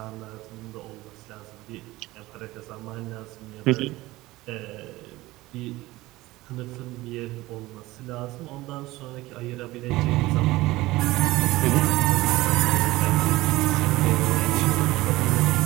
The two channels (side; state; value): left; quieter; 18.7 dB